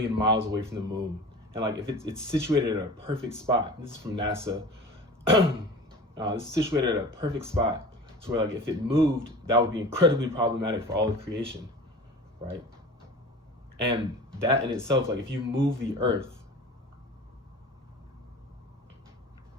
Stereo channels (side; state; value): both; normal; correlation 0.37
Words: miles away from the moon, and like if it's situated at a perfect spot. This is from NASA. It's situated at a perfect spot. So where like if it moved, that would be incredibly problematic for all of creation, right? And that in itself, like if you move the Earth,